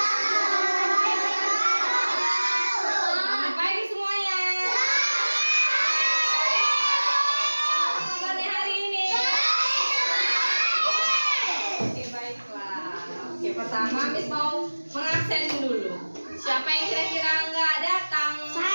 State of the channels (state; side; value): inverted; both; correlation -1.00